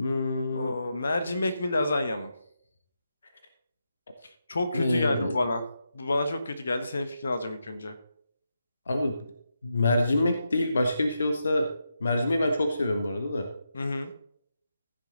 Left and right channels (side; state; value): both; inverted; correlation -0.85